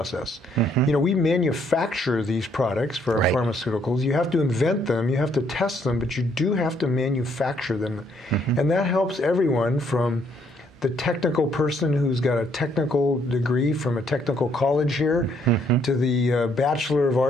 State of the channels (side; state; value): both; normal; correlation 0.68